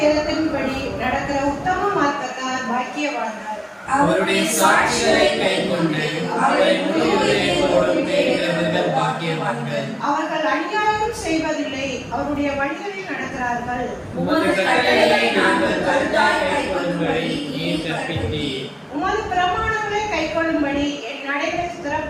நடக்கிற உத்தம மார்க்கத்தார் பாக்கியவான்கள். அவருடைய சாட்சிகளை கைக்கொண்டு அவரை முழு இதயத்தோடு தேடுகிறவர்கள் பாக்கியவான்கள். அவர்கள் அநியாயம் செய்வதில்லை, அவருடைய வழிகளில் நடக்கிறார்கள். உமது கட்டளைகளை நாங்கள் கருத்தாய் கைக்கொள்ளும்படி நீர் கற்பித்தீர். உமது பிரமாணங்களை கைக்கொள்ளும்படி என் நடைகள்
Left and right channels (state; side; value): identical; both; correlation 1.00